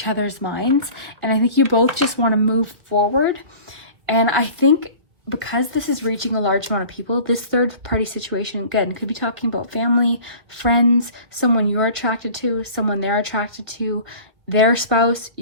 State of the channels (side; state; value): left; late; 2.1 ms